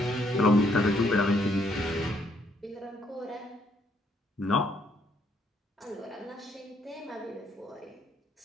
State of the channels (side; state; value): both; normal; correlation 0.70